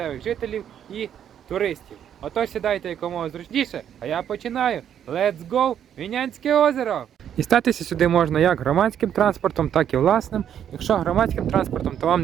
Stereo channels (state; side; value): quieter; left; 9.4 dB